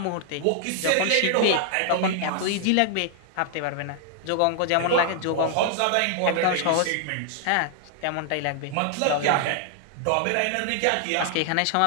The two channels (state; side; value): different; both; correlation 0.00